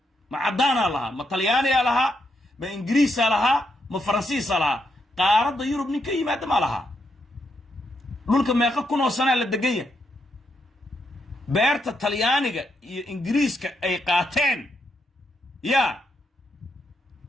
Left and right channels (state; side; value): normal; both; correlation 0.80